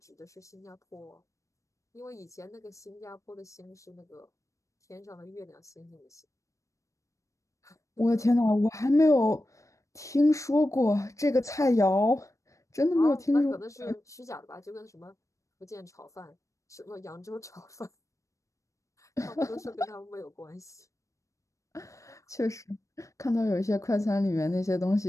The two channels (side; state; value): right; late; 0.15 ms